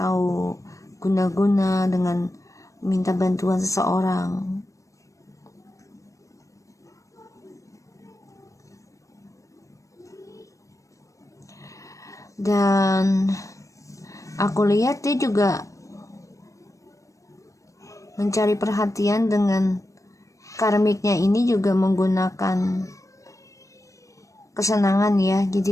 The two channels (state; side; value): late; right; 0.16 ms